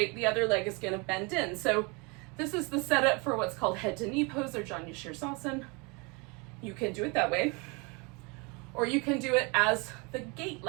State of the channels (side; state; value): left; quieter; 29.6 dB